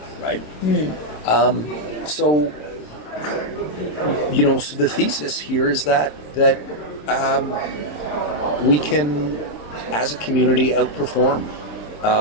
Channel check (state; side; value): late; right; 27 ms